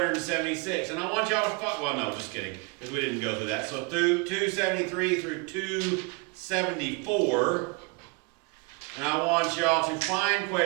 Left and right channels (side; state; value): left; quieter; 29.6 dB